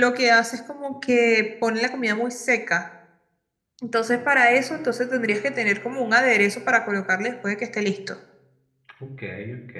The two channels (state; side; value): identical; both; correlation 1.00